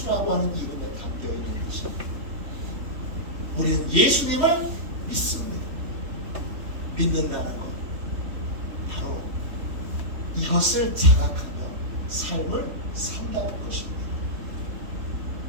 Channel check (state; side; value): late; left; 3.6 ms